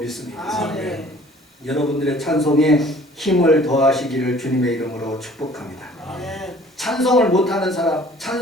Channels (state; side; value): normal; both; correlation 0.52